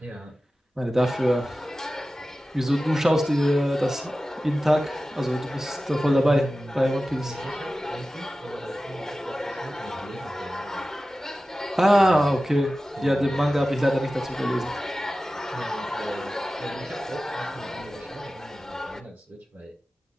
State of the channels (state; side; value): normal; both; correlation 0.95